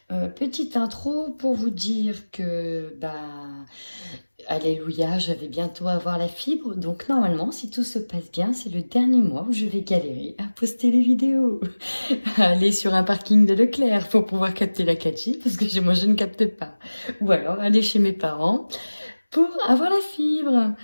Petite intro pour vous dire que, alléluia, je vais bientôt avoir la fibre. Donc normalement, si tout se passe bien, c'est le dernier mois où je vais galérer à poster les vidéos. Aller sur un parking de Leclerc pour pouvoir capter la 4G, parce que moi je ne capte pas. Ou alors aller chez mes parents pour avoir la fibre.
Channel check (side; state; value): both; inverted; correlation -1.00